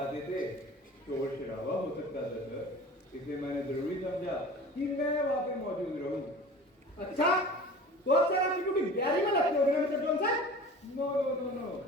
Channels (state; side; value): normal; both; correlation 0.39